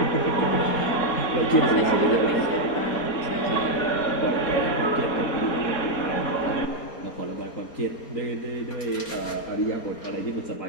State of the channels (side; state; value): right; late; 4.2 ms